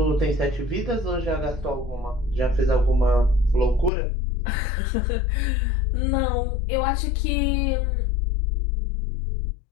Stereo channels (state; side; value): drops out; right; at 3.9 s